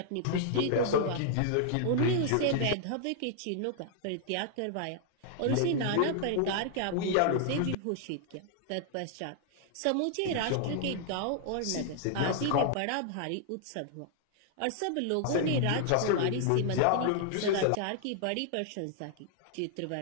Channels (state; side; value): different; both; correlation -0.01